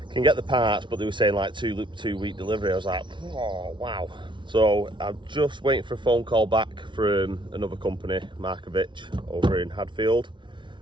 Can get the parts, but they were saying like two week delivery. I was like, oh wow. So I'm just waiting for a phone call back from another company, Markovic, over in Hadfield.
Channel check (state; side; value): late; left; 0.24 ms